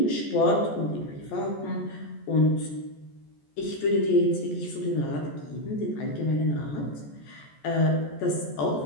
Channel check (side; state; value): right; late; 14 ms